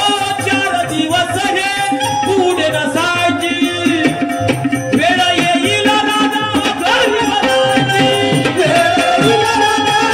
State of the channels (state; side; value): identical; both; correlation 1.00